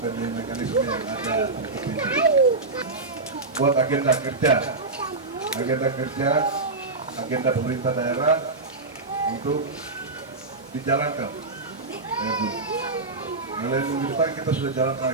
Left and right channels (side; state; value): left; quieter; 3.5 dB